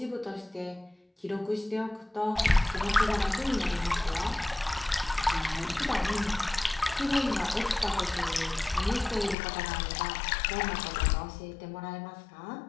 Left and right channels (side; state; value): right; drops out; at 9.3 s